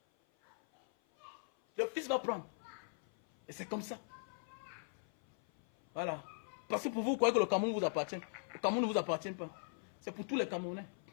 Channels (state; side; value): silent; right; 51 dB below the other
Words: Le fils va prendre. Et c'est comme ça. Voilà. Parce que pour vous, croyez que le Cameroun vous appartient. Le Cameroun ne vous appartient pas. C'est pour tous les Camerounais.